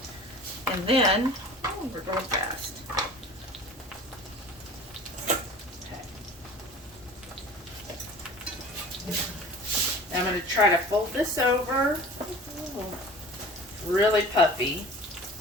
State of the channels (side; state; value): both; normal; correlation 0.42